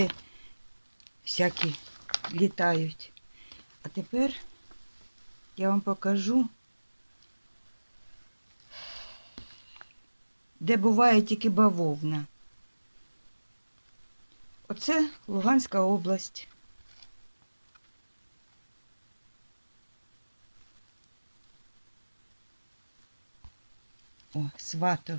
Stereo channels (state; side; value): inverted; both; correlation -1.00